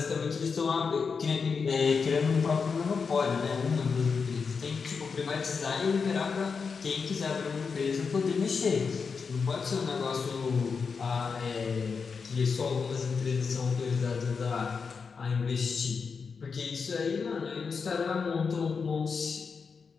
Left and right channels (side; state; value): right; quieter; 5.4 dB